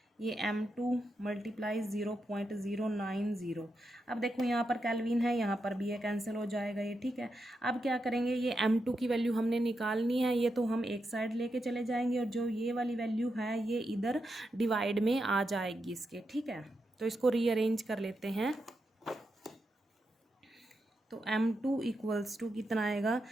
ये M2 मल्टीप्लाई 0.090। अब देखो यहाँ पर केल्विन है, यहाँ पर भी ये कैंसिल हो जाएगा ये, ठीक है। अब क्या करेंगे, ये M2 की वैल्यू हमने निकालनी है, ये तो हम एक साइड लेके चले जाएंगे और जो ये वाली वैल्यू है ये इधर डिवाइड में आ जाएगी इसके, ठीक है। तो इसको रीअरेंज कर लेते हैं। तो M2 इक्वल्स टू कितना आएगा,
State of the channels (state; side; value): normal; both; correlation 0.86